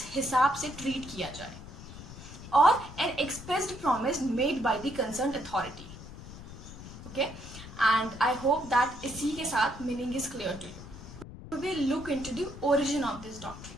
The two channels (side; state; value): left; noise; rumble, 14 dB below the sound